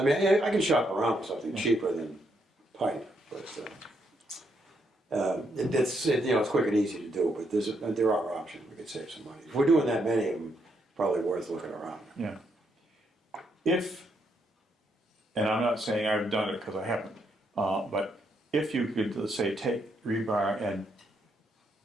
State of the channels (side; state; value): both; normal; correlation 0.77